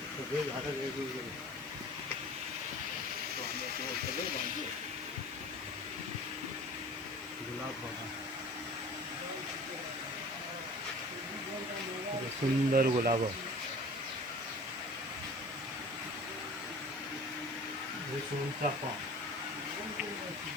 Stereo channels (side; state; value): right; noise; hiss, 21 dB below the sound